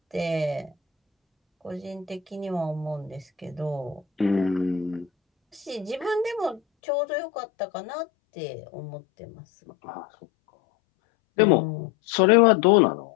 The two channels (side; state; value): right; drops out; at 6.6 s